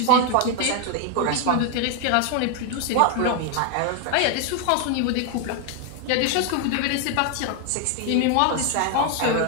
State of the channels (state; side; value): different; both; correlation 0.01